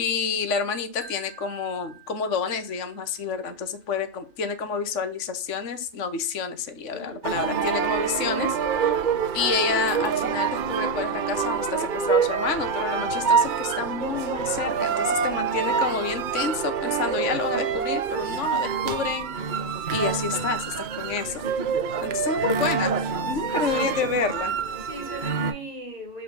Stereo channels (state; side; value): late; right; 3.4 ms